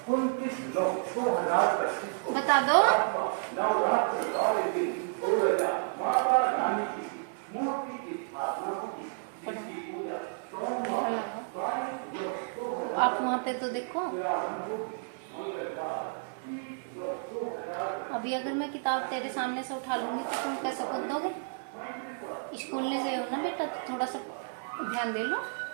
बता दो। आप वहाँ पे तो देखो। अभी अगर मैं किताब तेरे सामने से उठा लूंगी तो तुम कैसे कूद दोगे? स्कूल नहीं गए हो ना बेटा, तो थोड़ा सा ध्यान दे लो।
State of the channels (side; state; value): left; silent; 57 dB below the other